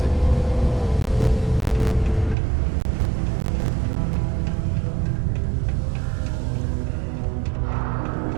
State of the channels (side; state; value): left; drops out; at 2.4 s